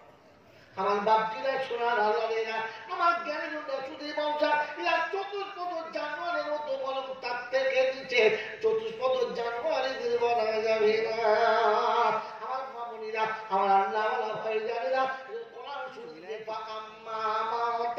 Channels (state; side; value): identical; both; correlation 1.00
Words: আমার বাপজিরা, সোনার আল্লাহেরা, আমার জ্ঞানের শুধু বংশা, এরা চতুষ্পদ জানোয়ারের মতো, বরং তার থেকে নিচে চতুষ্পদ জানোয়ারেদের বলা যাবে না। আমার মামুনিরা, আমার আল্লাহ ভাই জানেরা, কোরআন শুনলে ফাআম্মা মান